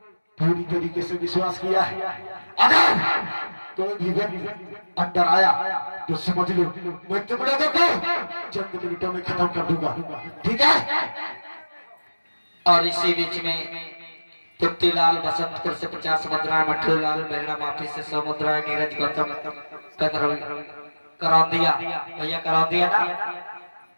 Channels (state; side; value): inverted; both; correlation -1.00